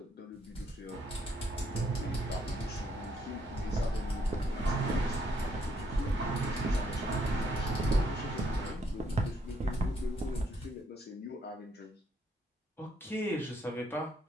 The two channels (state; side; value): normal; both; correlation 0.72